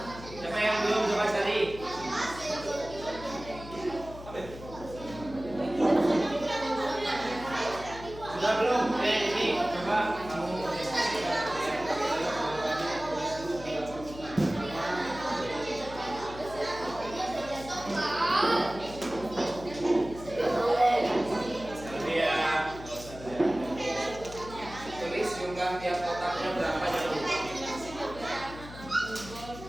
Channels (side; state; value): left; noise; hum, 14 dB below the sound